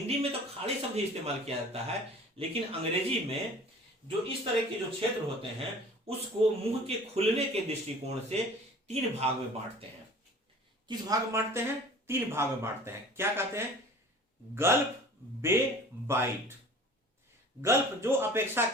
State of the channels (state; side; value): normal; both; correlation 0.45